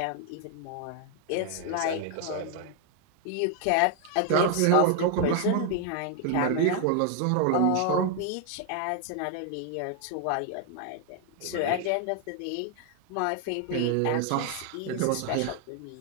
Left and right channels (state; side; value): different; both; correlation 0.00